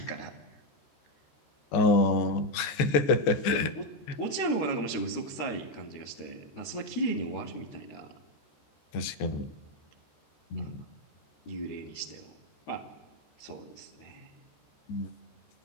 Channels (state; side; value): late; right; 14 ms